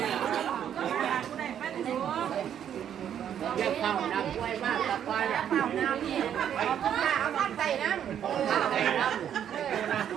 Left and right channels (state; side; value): quieter; left; 9.5 dB